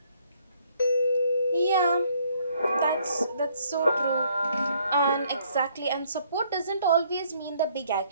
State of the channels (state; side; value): inverted; both; correlation -0.66